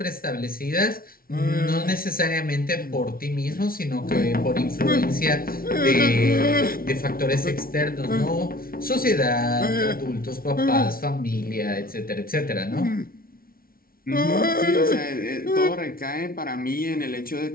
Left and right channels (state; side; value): late; right; 0.43 ms